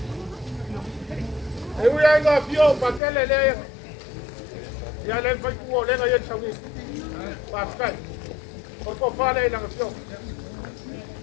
Eu ia ainda fio pakai le. Ya le fai ku le ngai sawi. Pakai. Ora ko fale lau fio.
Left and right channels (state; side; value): drops out; right; at 3.0 s